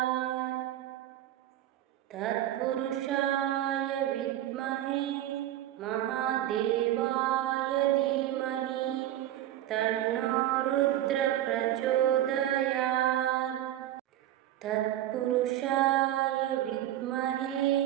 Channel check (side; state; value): left; quieter; 12.9 dB